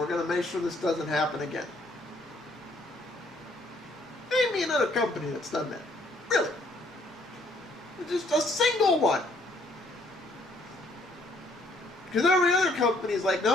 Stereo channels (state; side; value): normal; both; correlation 0.65